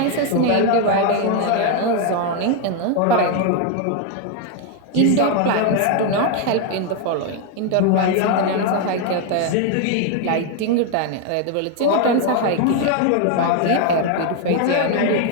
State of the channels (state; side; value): different; both; correlation 0.01